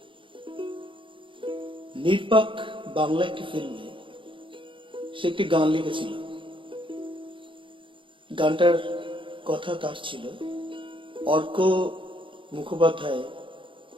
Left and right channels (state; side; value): late; left; 0.25 ms